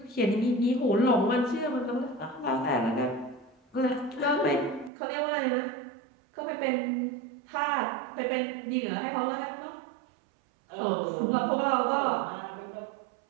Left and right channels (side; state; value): left; drops out; at 4.9 s